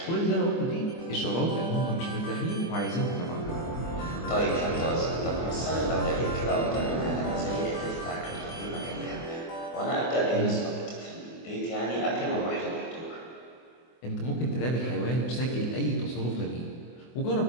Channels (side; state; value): right; late; 24 ms